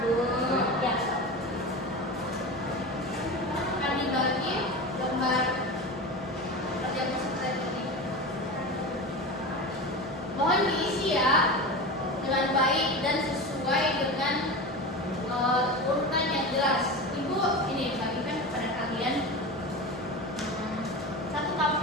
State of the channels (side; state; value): both; normal; correlation 0.27